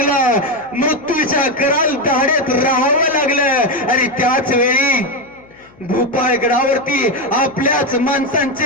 मृत्यूच्या कराल दाढेत राहावं लागलं आणि त्याच वेळी भूपाळगडावरती आपल्याच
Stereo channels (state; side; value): noise; left; hum, 28 dB below the sound